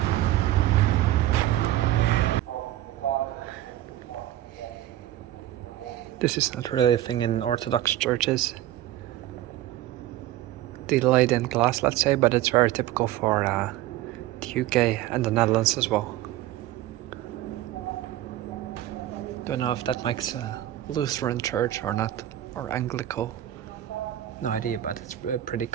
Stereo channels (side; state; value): left; quieter; 14.0 dB